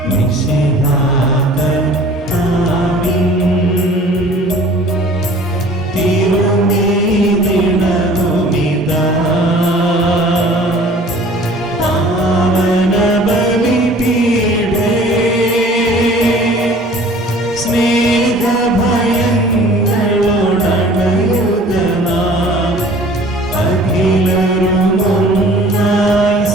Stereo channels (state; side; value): normal; both; correlation 0.49